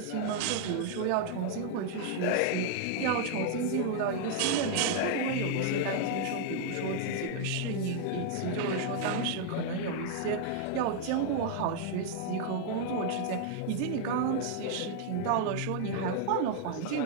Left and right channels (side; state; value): both; different; correlation 0.00